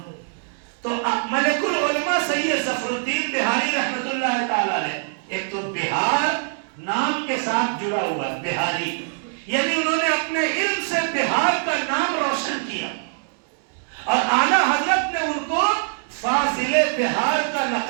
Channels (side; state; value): left; silent; 63 dB below the other